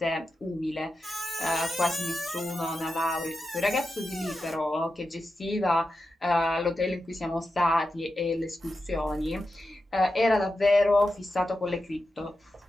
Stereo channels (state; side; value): normal; both; correlation 0.90